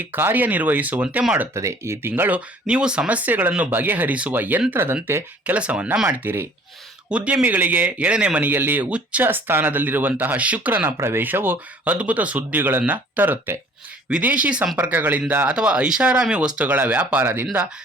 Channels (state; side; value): normal; both; correlation 0.53